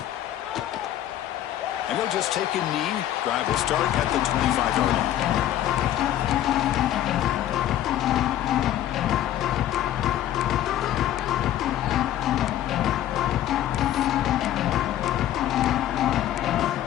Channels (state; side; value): quieter; right; 12.3 dB